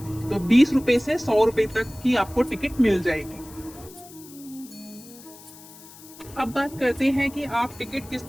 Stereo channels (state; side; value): noise; left; hiss, 20 dB below the sound